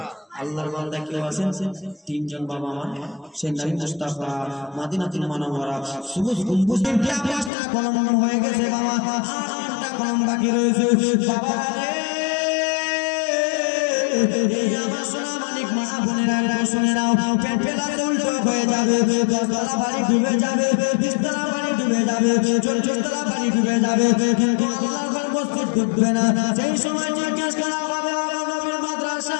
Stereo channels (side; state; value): right; drops out; at 7.5 s